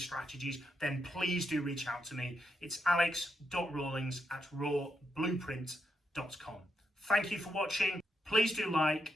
then please do reach out to me. It's alex.rawlings@rawblueprint.com. Thank you for watching. Please do like,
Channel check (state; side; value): normal; both; correlation 0.82